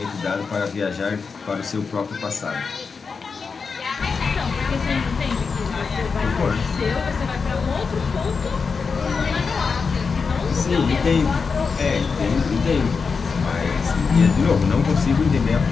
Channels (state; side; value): quieter; right; 5.2 dB